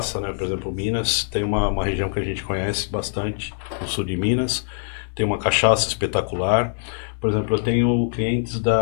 né? Por exemplo, Minas tem uma região que a gente conhece bastante, no sul de Minas, tem uma cachaça espetacular. Por exemplo, eu tenho clientes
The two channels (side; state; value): right; silent; digital silence